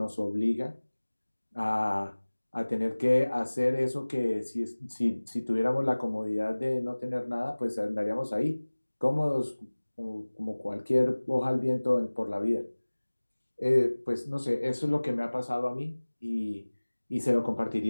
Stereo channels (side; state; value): both; inverted; correlation -1.00